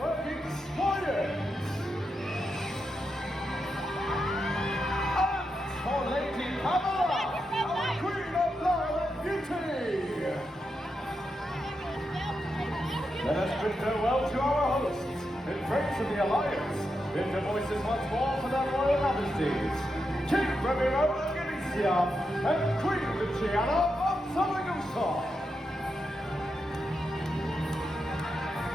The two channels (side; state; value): both; normal; correlation 0.86